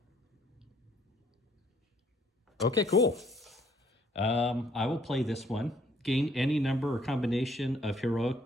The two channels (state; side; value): normal; both; correlation 0.64